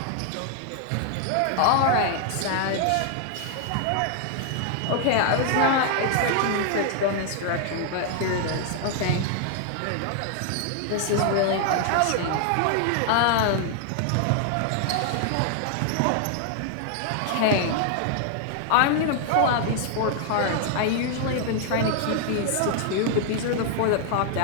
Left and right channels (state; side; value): different; both; correlation 0.00